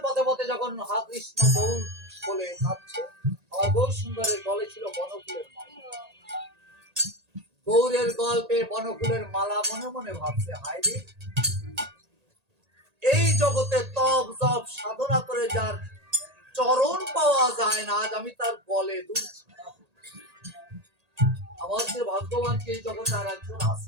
পথে পথে যখন হা কৃষ্ণ বউ বলে কাঁদছে, আমার বউ সুন্দরের গলে ছিল বনফুলের মালা। গৌরের গল্পে বনফুলের মালা মনে মনে ভাবছে, হায় রে, এই জগতে তপ জপ সাধনা করে যার চরণ পাওয়া যায় না, আজ আমি তার গলে দুলছি। আমার যে ভাগ্যবান কি এই জগতে আর একজন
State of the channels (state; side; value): late; left; 1.8 ms